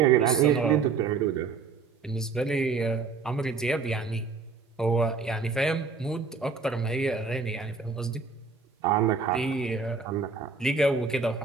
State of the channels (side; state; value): left; quieter; 4.9 dB